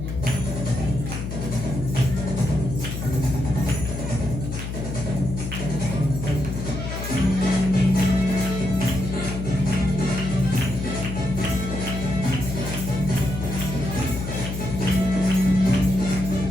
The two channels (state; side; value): noise; left; hum, 5 dB below the sound